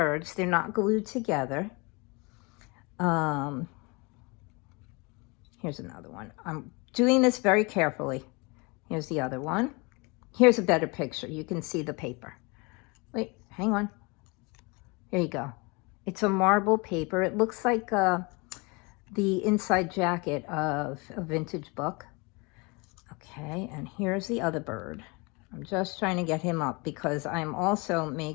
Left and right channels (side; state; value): right; quieter; 28.3 dB